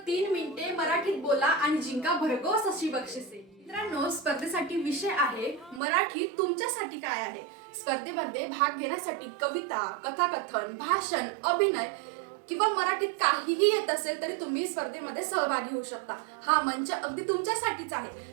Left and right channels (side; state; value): left; drops out; at 5.8 s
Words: 3 मिनिटे मराठीत बोला आणि जिंका भरघोस अशी बक्षिसे। मित्रांनो, स्पर्धेसाठी विषय आहे मराठी तुमच्यासाठी काय आहे। स्पर्धेमध्ये भाग घेण्यासाठी कविता, कथाकथन, भाषण, अभिनय किंवा मराठीत काहीही येत असेल तरी तुम्ही स्पर्धेमध्ये सहभागी होऊ शकता। हा मंच अगदी तुमच्यासाठीच